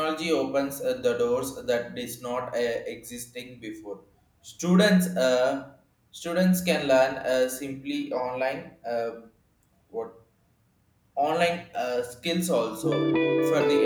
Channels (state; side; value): identical; both; correlation 1.00